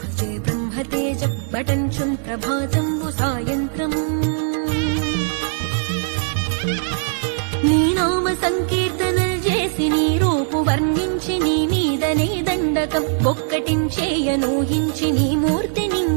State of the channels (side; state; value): left; silent; digital silence